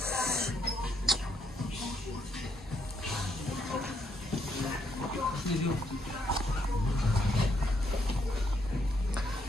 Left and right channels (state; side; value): normal; both; correlation 0.74